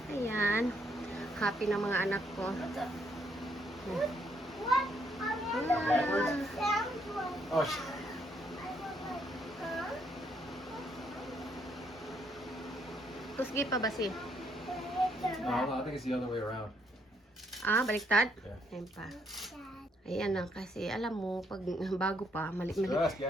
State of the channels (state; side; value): normal; both; correlation 0.71